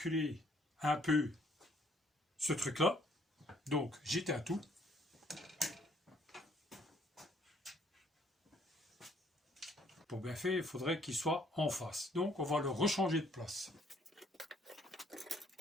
un peu ce truc-là. Donc, j'éteins tout. Pour bien faire, il faudrait qu'il soit en face. Donc, on va le rechanger de place.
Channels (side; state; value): both; normal; correlation 0.64